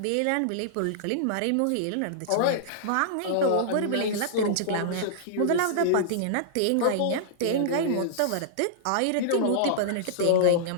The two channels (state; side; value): different; both; correlation -0.02